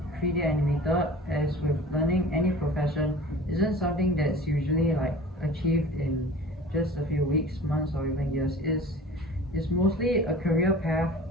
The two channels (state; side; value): normal; both; correlation 0.41